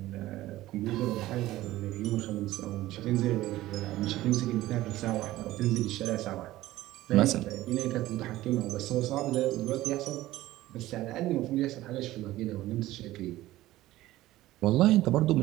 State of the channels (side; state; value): left; quieter; 16.2 dB